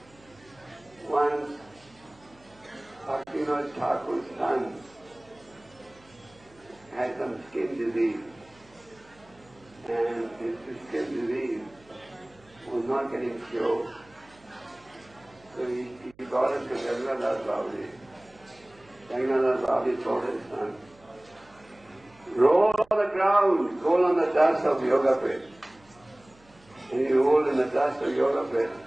Once, Bhaktivinoda Thakur's son had some skin disease, and his skin disease was not getting cured. So he brought him to Jagannath Babaji. Jagannath Babaji told his son, roll on the ground, roll on the dust of yoga pit. And he rolled in the dust of yoga pit,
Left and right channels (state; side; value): noise; right; hum, 29 dB below the sound